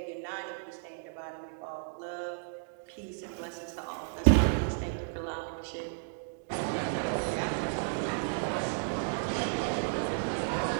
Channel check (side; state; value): left; silent; digital silence